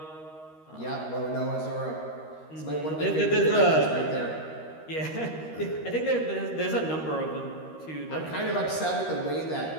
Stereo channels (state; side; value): late; right; 13 ms